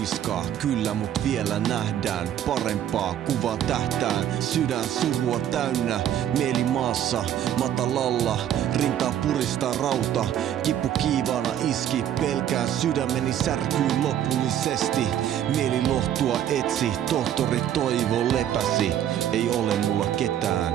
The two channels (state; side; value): quieter; left; 10.6 dB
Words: kyllä mut vielä nähdään parempaa kuvaa tähtään. Sydän surua täynnä, mieli maassa matalalla, rintaa puristaa rauta. Kippu kiivaana iski, pelkään sydämeni särkyy lopullisesti. Mieli lohtua etsi, tohtori Toivo lepäsi. Ei ole mulla ketään,